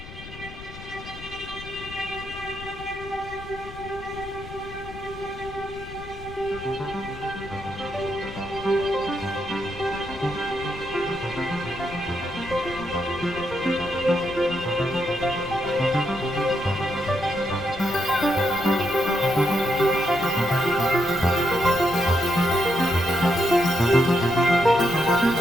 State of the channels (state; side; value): noise; left; rumble, 14 dB below the sound